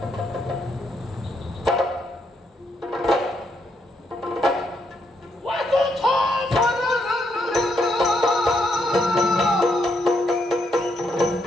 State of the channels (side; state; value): both; normal; correlation 0.77